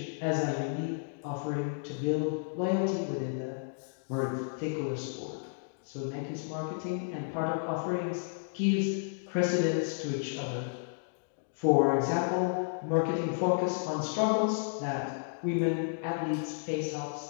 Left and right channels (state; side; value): silent; right; digital silence